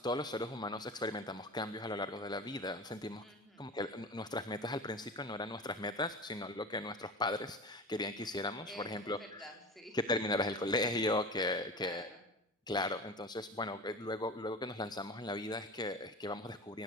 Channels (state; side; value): normal; both; correlation 0.32